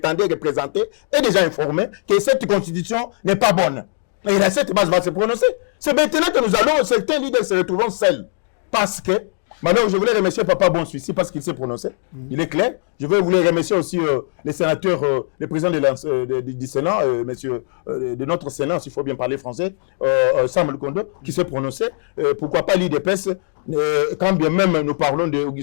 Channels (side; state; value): right; silent; digital silence